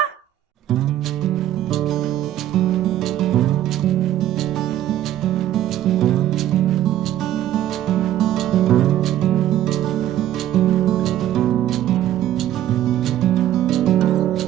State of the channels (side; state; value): left; quieter; 12.4 dB